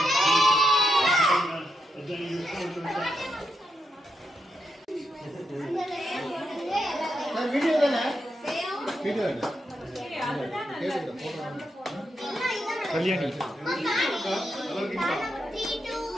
வீடியோ தானே? வீடியோ இல்ல Kalyani.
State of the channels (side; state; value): both; normal; correlation 0.83